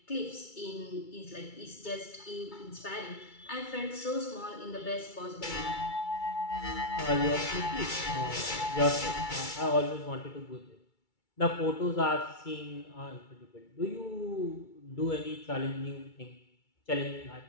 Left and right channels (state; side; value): late; right; 2.3 ms